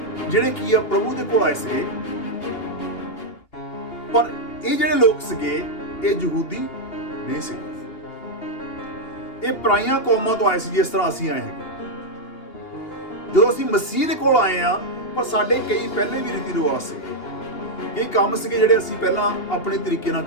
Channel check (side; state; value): right; late; 2.8 ms